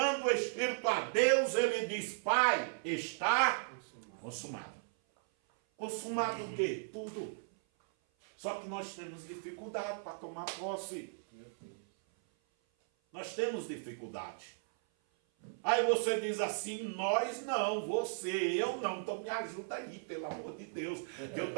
o Espírito a Deus, ele diz, Pai, está consumado. Consumado o quê? Tudo. Só que nós temos dificuldade para tomar posse. Nós temos dificuldade. Aí você diz assim, nós não, você, eu não, então me ajuda aí, pelo amor de Deus, que eu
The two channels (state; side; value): silent; left; 54 dB below the other